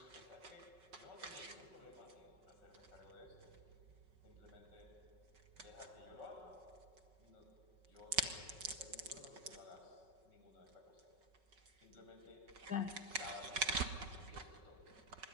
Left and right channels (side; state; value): left; late; 5.4 ms